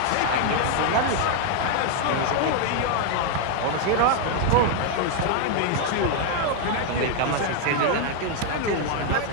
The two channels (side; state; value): both; different; correlation 0.00